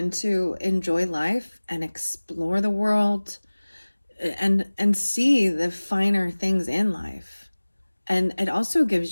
to enjoy life and explore the world and see the finer things in life? And it also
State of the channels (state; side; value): inverted; both; correlation -1.00